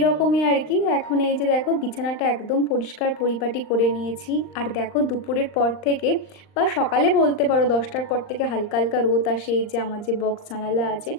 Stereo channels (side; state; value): right; late; 39 ms